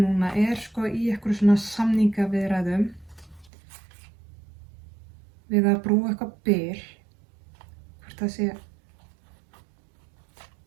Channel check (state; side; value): drops out; left; at 3.5 s